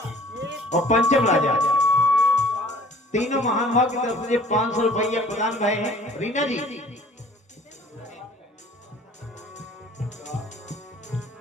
और पंचम राजा तीनों महान भाव की तरफ से 500 रुपया प्रदान भय हैं। रीना जी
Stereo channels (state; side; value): normal; both; correlation 0.52